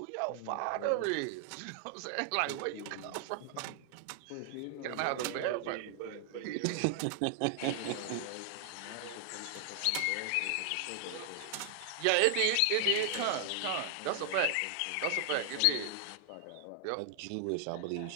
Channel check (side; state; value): both; different; correlation 0.00